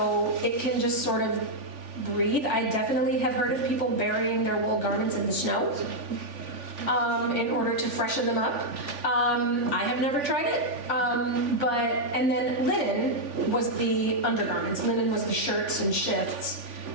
it can just sort of breathe. I definitely have heard of people burying their wool garments in the snow in order to freshen them up. I have never tried it, and then linen was the undergarments. Linen was the shirts and shifts,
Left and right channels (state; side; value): late; left; 3.5 ms